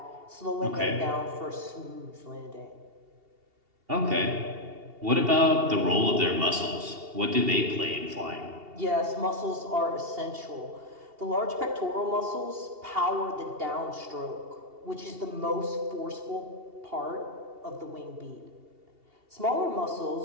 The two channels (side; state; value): left; late; 2.8 ms